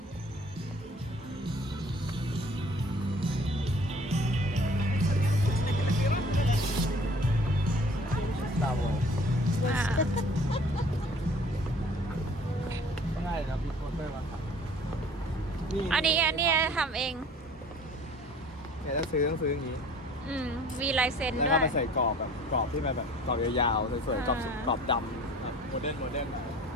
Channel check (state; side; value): normal; both; correlation 0.50